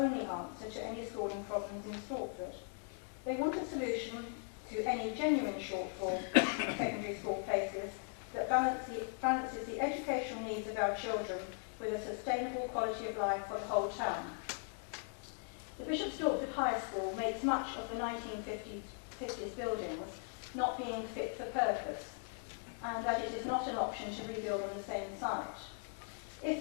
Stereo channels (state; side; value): silent; right; 52 dB below the other